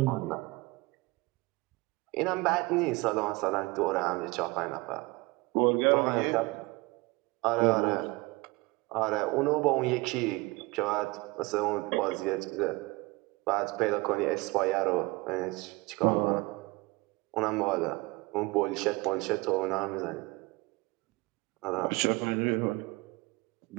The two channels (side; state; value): left; quieter; 24.3 dB